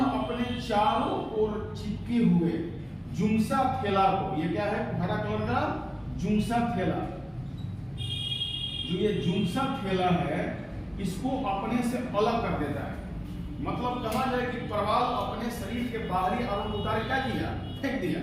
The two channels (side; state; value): both; identical; correlation 1.00